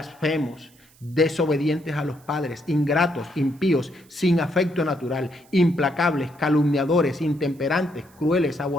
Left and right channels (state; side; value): noise; right; hiss, 29 dB below the sound